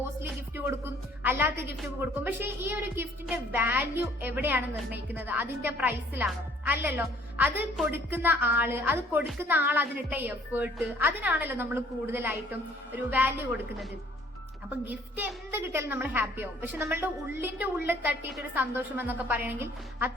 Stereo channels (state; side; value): normal; both; correlation 0.58